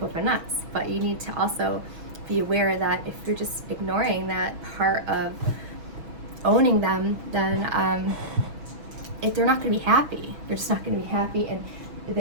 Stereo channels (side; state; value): left; late; 6.2 ms